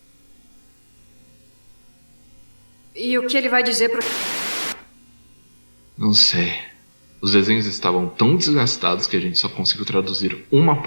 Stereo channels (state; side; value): inverted; both; correlation -1.00